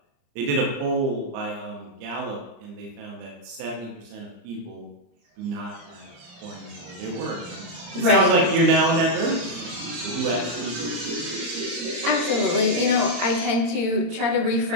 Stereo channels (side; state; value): left; late; 35 ms